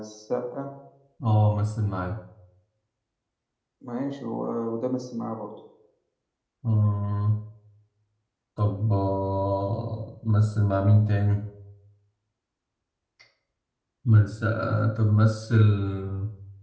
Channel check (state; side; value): identical; both; correlation 1.00